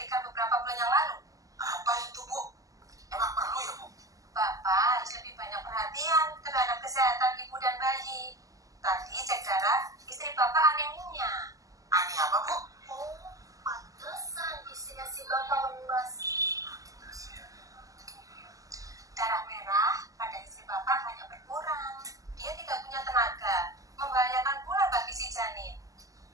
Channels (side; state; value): left; late; 0.17 ms